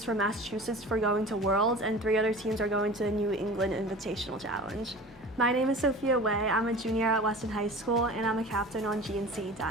from Massachusetts for going to Worlds, and 3 other teams are going to the New England Invitational Challenge. My name is Sophia Wei. I'm a junior at Weston High School, and I'm a captain on GNCE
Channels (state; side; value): normal; both; correlation 0.38